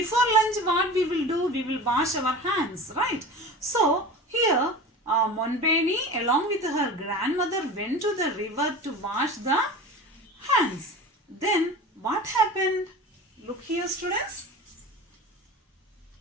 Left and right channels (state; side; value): normal; both; correlation 0.34